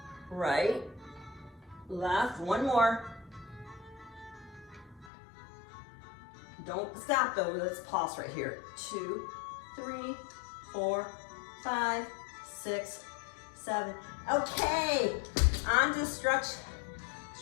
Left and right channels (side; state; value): right; drops out; at 5.1 s